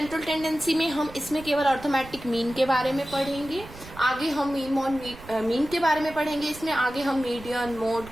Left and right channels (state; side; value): noise; right; rumble, 17 dB below the sound